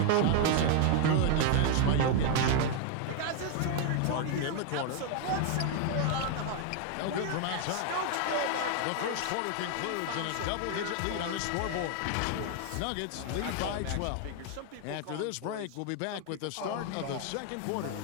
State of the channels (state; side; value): different; both; correlation 0.00